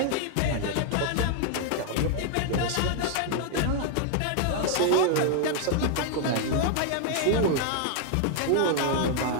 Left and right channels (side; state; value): both; different; correlation 0.00